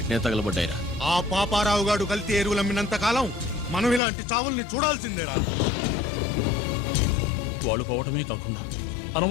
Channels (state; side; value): drops out; right; at 4.0 s